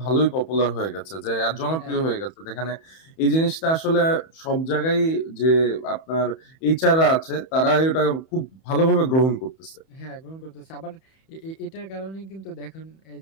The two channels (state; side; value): late; right; 31 ms